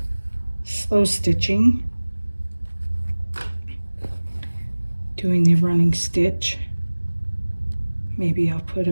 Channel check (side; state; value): both; inverted; correlation -1.00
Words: slow stitching, doing the running stitch. Maybe I'll put